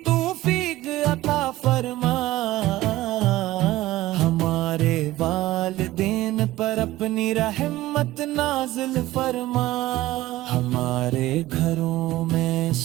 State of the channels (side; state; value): left; quieter; 16.6 dB